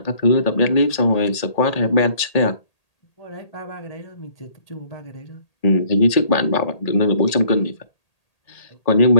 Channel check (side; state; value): right; late; 1.8 ms